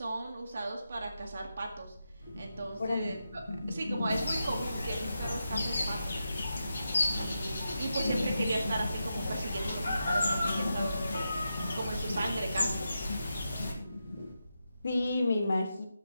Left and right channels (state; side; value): inverted; both; correlation -0.87